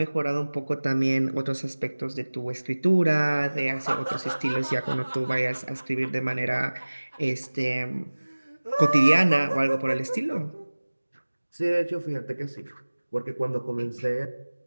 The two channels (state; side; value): inverted; both; correlation -1.00